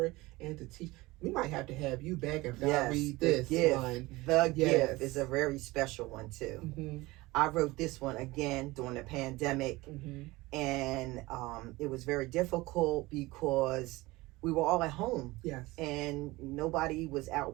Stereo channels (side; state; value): left; quieter; 20.7 dB